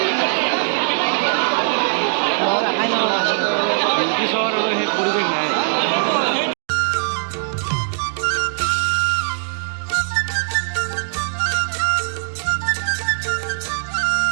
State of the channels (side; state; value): left; silent; digital silence